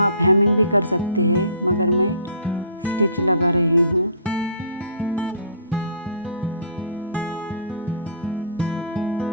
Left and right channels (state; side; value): inverted; both; correlation -0.51